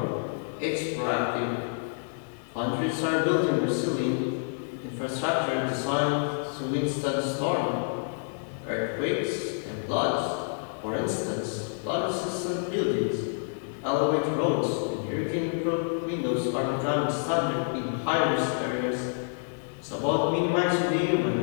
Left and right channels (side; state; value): right; silent; 59 dB below the other